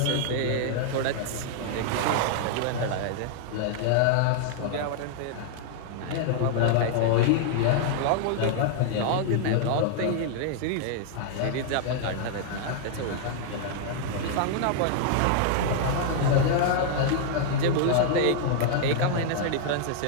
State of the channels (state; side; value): different; both; correlation -0.01